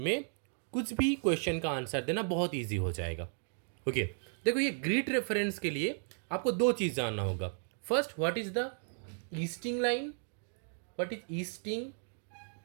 कुछ भी क्वेश्चन का आंसर देना बहुत ईजी हो जाएगा। ओके, देखो ये ग्रिड रेफरेंस के लिए आपको दो चीज़ जानना होगा। First, what is the easting line, what is easting.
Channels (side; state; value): left; silent; 55 dB below the other